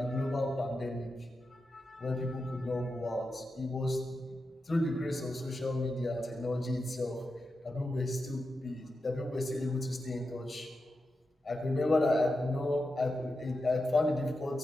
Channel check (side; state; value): both; normal; correlation 0.89